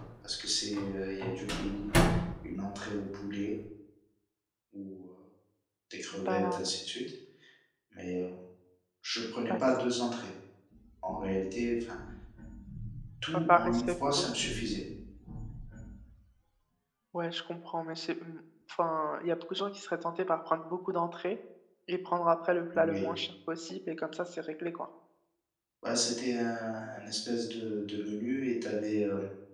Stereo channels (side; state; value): both; identical; correlation 1.00